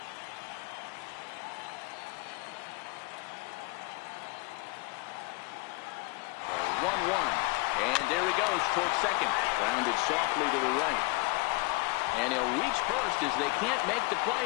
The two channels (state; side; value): quieter; right; 25.9 dB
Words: And there he goes towards second. Grounded softly to the right. And he'll reach first as they can't make the play